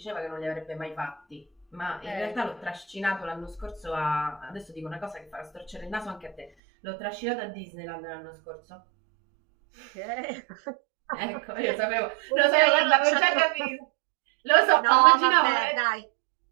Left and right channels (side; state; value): left; drops out; at 6.5 s